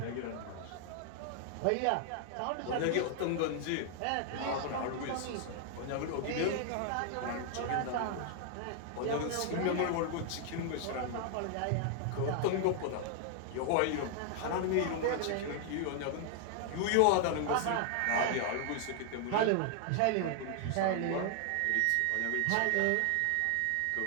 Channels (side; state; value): both; different; correlation 0.00